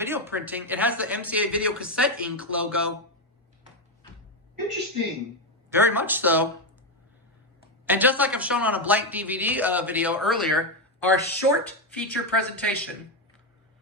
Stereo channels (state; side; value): normal; both; correlation 0.08